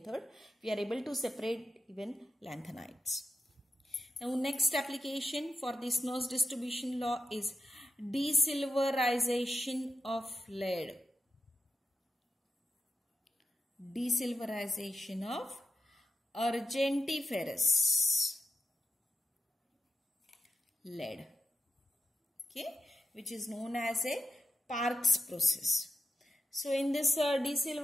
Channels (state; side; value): normal; both; correlation 0.88